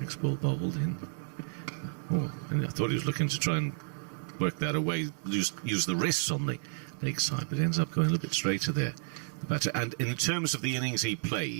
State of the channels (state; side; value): silent; left; 57 dB below the other